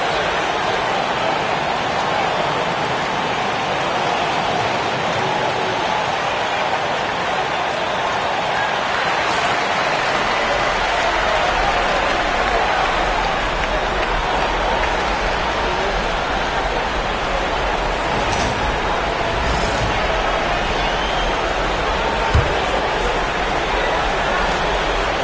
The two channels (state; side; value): identical; both; correlation 1.00